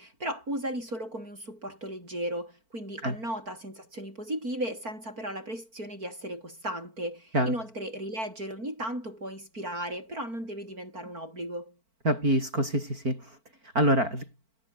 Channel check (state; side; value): late; left; 4.5 ms